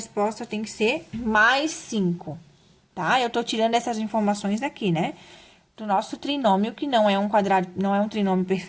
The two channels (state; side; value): identical; both; correlation 1.00